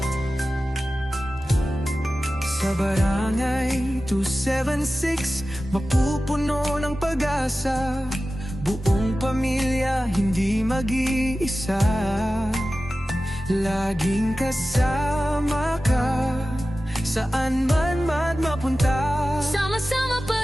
Sa barangay 276, mapupuno ng pag-asa. Buong pamilya, hindi mag-iisa. Laging kasama ka, saan man mapunta. Sama-sama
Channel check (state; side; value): normal; both; correlation 0.95